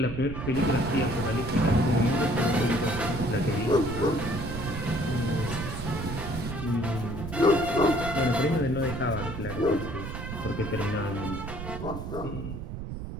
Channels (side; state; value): right; noise; rumble, 7 dB below the sound